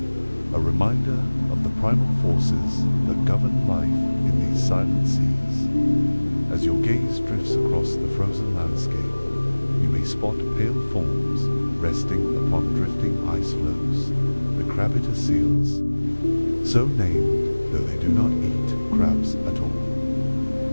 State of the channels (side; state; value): both; inverted; correlation -1.00